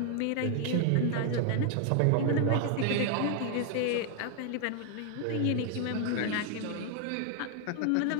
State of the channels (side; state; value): both; different; correlation 0.00